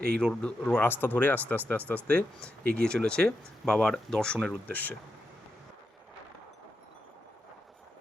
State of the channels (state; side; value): normal; both; correlation 0.86